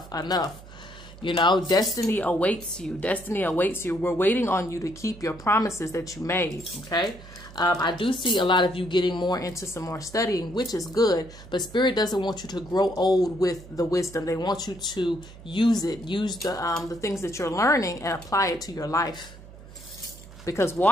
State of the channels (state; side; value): noise; right; hum, 18 dB below the sound